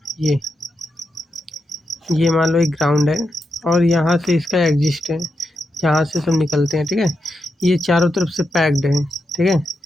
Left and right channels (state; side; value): normal; both; correlation 0.85